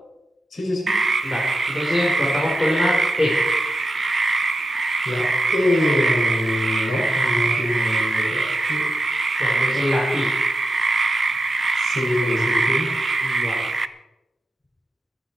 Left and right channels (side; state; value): both; normal; correlation 0.89